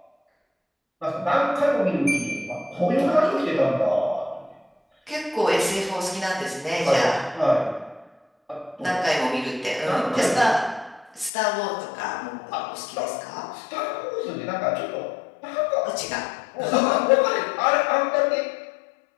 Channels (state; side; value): drops out; right; at 11.3 s